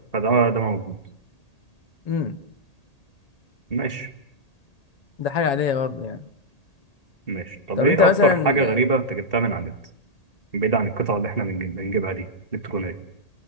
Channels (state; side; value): late; right; 1.8 ms